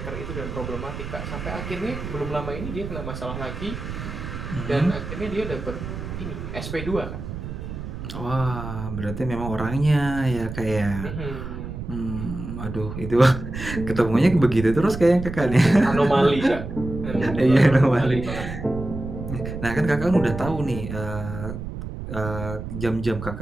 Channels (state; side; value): noise; right; rumble, 8 dB below the sound